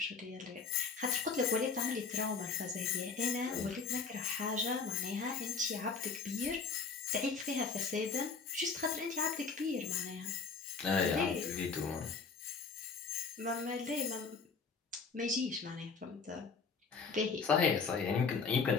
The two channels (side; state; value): right; quieter; 5.2 dB